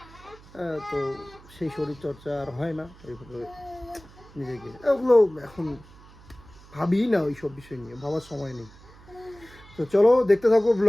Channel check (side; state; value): right; noise; hum, 22 dB below the sound